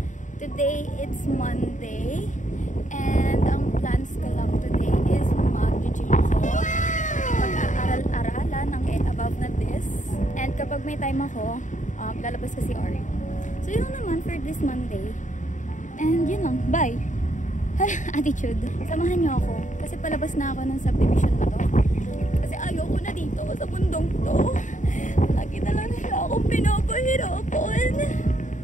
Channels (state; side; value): late; right; 0.36 ms